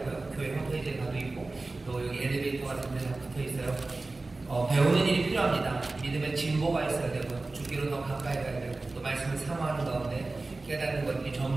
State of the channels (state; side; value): quieter; left; 3.3 dB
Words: 교회 홈페이지에 가도 있고, 또 여기 엘리베이터 같은 데가 붙어 있어요. 배우는 일이 필요합니다. 믿음의 진보가 있어야 되고요. 주기로 더 가까이 가야 되고, 또 말씀을 사모하는 가운데 깨닫는 것들이